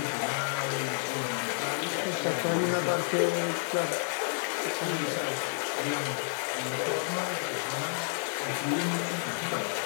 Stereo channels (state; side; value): silent; right; digital silence